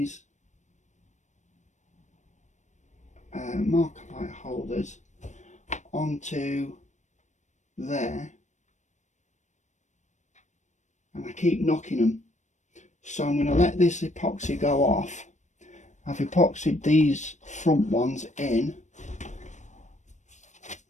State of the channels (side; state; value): right; late; 0.35 ms